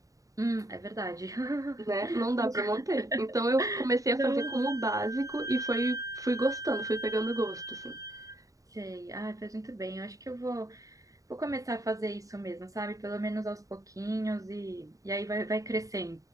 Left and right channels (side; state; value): left; late; 0.16 ms